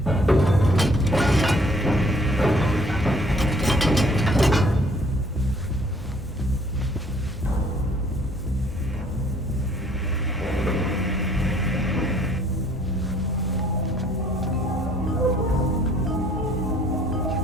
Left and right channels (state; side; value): normal; both; correlation 0.60